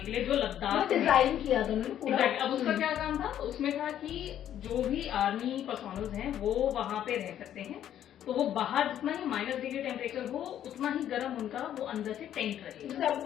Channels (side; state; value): right; quieter; 10.8 dB